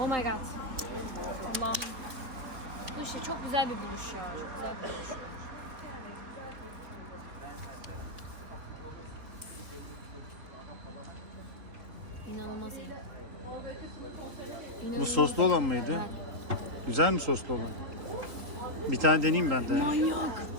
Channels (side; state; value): left; late; 3.6 ms